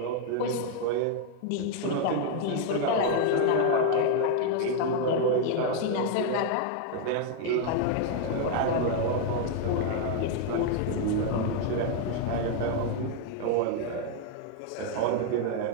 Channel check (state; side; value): different; both; correlation 0.00